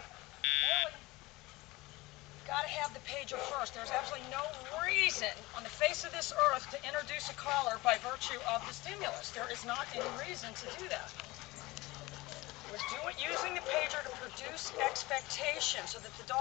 Bailey, you've got to have the pager first. There's absolutely no reason on the face of this earth to introduce a collar by virtue of the stimulus. There is not any reason to do that. We're using the pager to produce expectation so that the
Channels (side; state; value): right; quieter; 21.0 dB